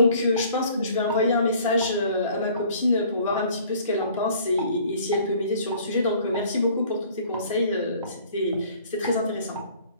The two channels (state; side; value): inverted; both; correlation -0.54